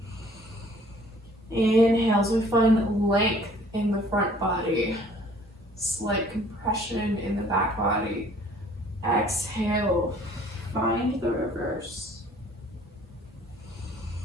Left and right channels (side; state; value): both; normal; correlation 0.56